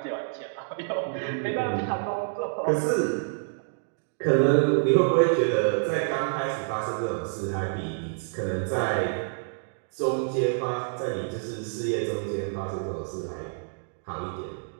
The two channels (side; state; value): left; silent; digital silence